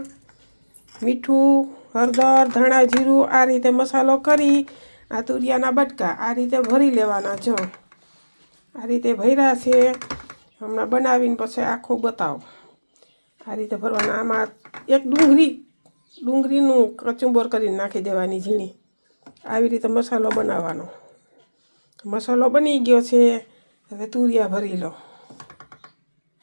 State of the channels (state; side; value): inverted; both; correlation -1.00